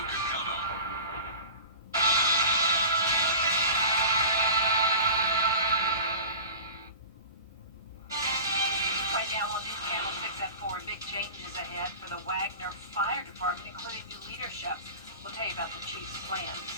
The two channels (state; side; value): inverted; both; correlation -0.36